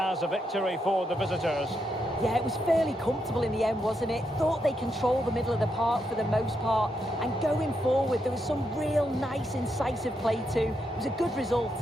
a victory for the visitors. Yeah, it was fairly comfortable in the end, wasn't it? Thought they controlled the middle of the park for the most part. And going forward, there was some real nice, incisive play too. It was a good result.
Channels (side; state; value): both; normal; correlation 0.81